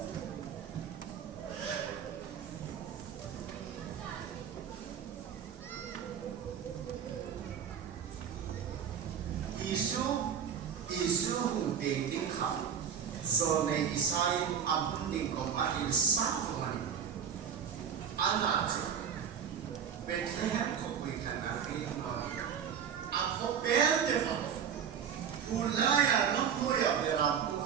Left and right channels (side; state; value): left; quieter; 8.1 dB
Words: Isu hung ting kham zo nei isai am ding ko mahil sa ko mani ana chu Bethlehem ko wi kana ri ma a ko bel de fa pulaya no moya bera pu